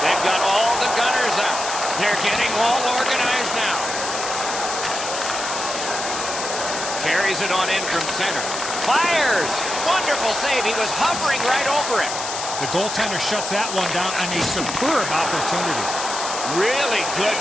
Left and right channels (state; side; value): noise; left; hiss, 5 dB below the sound